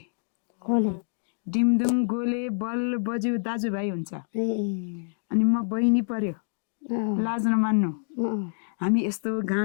खोले डिमदुङ गोले बल बज्यू दाजुभाइ हुन्छ ए अनि म बहिनी पर्यो लाज नमान्नु हामी यस्तो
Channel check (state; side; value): silent; right; digital silence